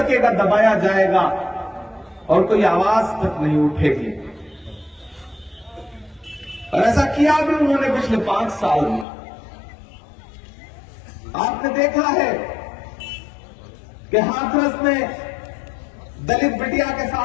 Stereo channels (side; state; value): right; drops out; at 9.1 s